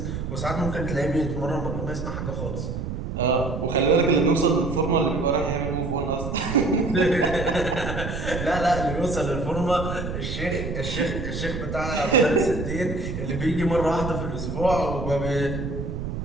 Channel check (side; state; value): right; noise; rumble, 5 dB below the sound